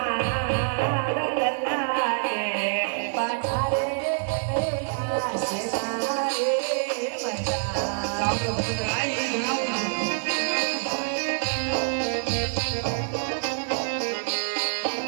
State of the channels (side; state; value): left; silent; 61 dB below the other